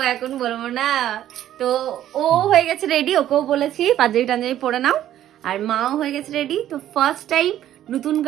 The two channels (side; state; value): left; quieter; 12.0 dB